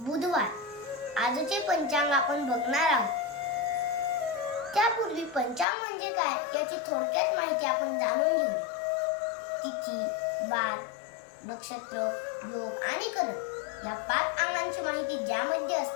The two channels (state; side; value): drops out; right; at 5.7 s